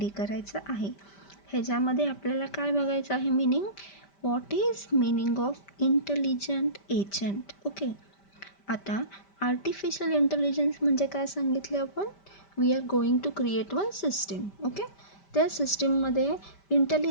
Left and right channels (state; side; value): late; right; 5.1 ms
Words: करायचं आहे. ह्याच्यामध्ये आपल्याला काय बघायचं आहे meaning, what is meaning of intelligent agent. Okay, आता आर्टिफिशियल इंटेलिजन्स म्हणजे काय सांगितले आपण, we are going to create one system. Okay, त्या सिस्टीममध्ये